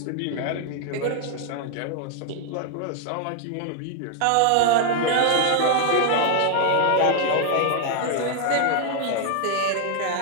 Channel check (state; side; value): different; both; correlation 0.00